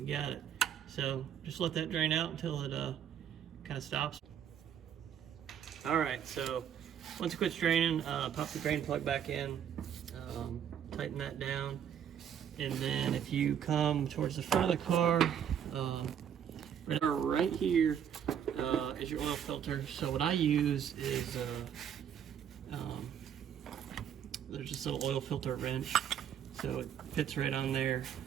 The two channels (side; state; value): left; quieter; 9.0 dB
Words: got it. So just let that drain out until it kind of stops. All right, so once it quits draining, pop the drain plug back in, tighten that down, and then if you come towards the front of the car, right here is your oil filter. So what I use is there's this little oil filter wrench, so it fits right on there.